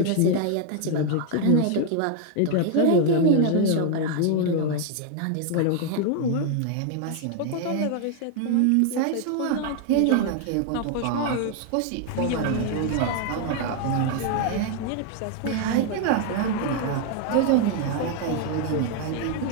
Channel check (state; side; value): different; both; correlation 0.00